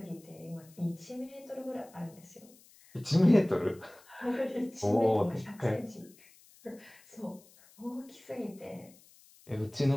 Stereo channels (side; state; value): left; noise; hiss, 26 dB below the sound